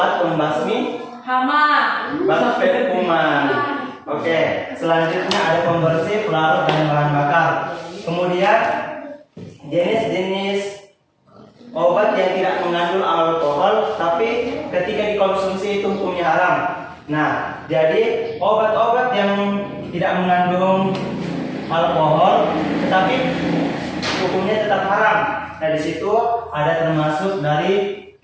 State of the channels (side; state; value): both; identical; correlation 1.00